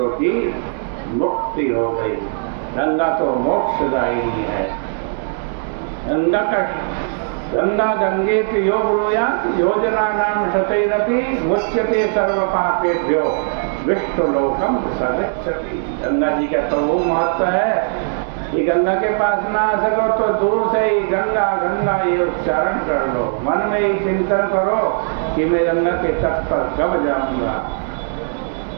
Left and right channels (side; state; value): left; silent; digital silence